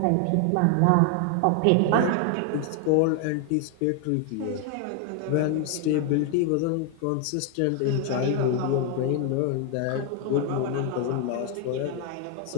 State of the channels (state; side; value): different; both; correlation 0.01